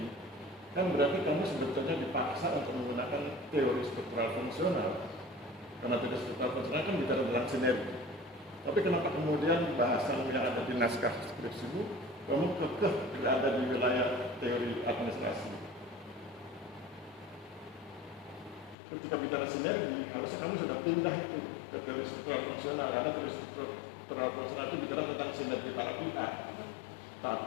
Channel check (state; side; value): drops out; right; at 18.8 s